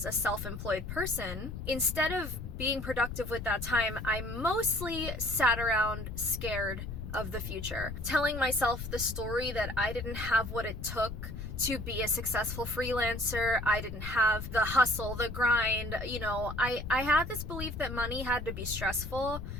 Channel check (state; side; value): noise; left; rumble, 7 dB below the sound